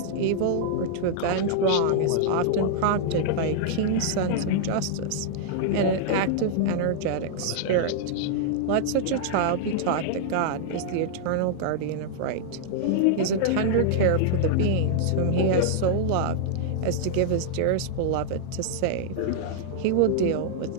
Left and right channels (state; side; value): different; both; correlation -0.01